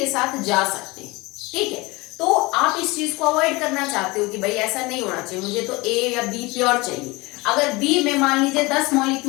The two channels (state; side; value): quieter; right; 23.4 dB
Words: साथ जा सकते हैं, ठीक है। तो आप इस चीज को अवॉइड करना चाहते हो कि भाई ऐसा नहीं होना चाहिए, मुझे तो ए या बी प्योर चाहिए। अगर बी में मान लीजिए 10